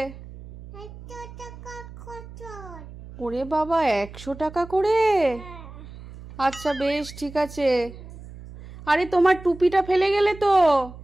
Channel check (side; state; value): right; noise; hum, 16 dB below the sound